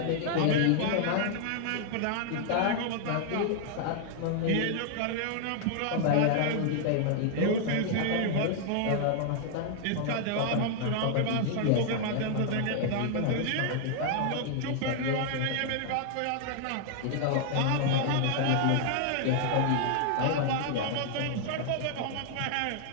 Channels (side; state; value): both; different; correlation 0.00